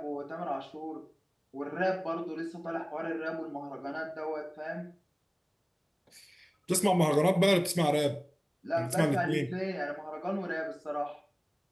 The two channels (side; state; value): both; identical; correlation 1.00